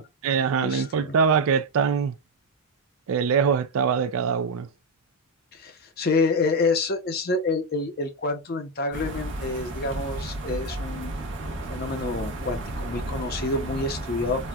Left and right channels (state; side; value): normal; both; correlation 0.07